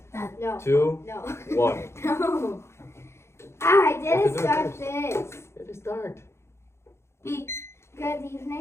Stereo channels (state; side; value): late; right; 0.13 ms